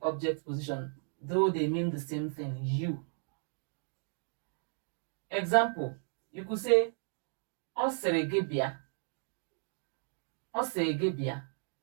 object position, though they mean the same thing, you. Example, you could say, Ọ sịrị gị bịa. Ọ sịrị gị bịa.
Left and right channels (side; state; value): left; silent; 55 dB below the other